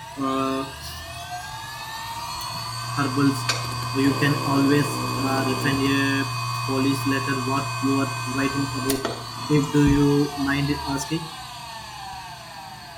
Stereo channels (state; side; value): identical; both; correlation 1.00